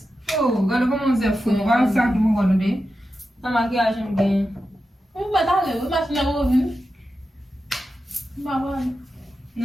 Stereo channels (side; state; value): both; normal; correlation 0.90